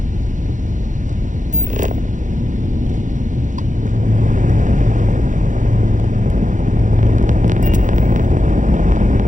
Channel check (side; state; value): left; late; 0.37 ms